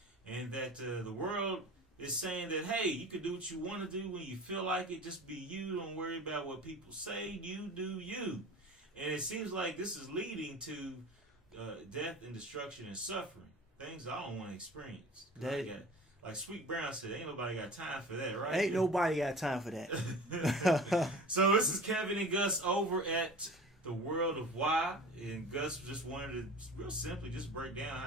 and that the world is saying that, hey, you can do what you want to do when you feel like it. Just be you. Don't worry about what people say. You do you. And it seems like this is leading to death and destruction and suffering. Things I don't want to experience. Like Sweet Brown said, ain't nobody got time for that, right? Ain't nobody got time for that. So this is Kevin and Gus over at The World of Why. And Gus just wanted to real simply just break down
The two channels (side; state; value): both; normal; correlation 0.39